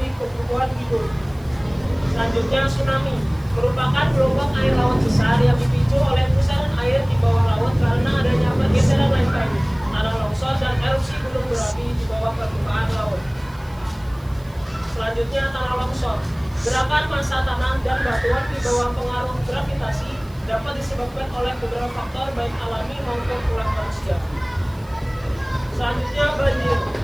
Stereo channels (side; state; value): right; noise; hiss, 28 dB below the sound